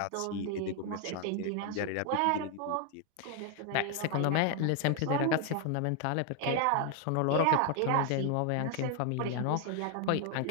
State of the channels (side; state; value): both; different; correlation 0.00